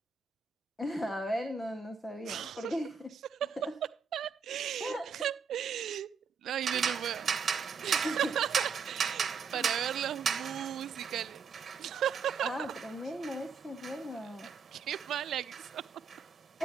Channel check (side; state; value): left; quieter; 5.8 dB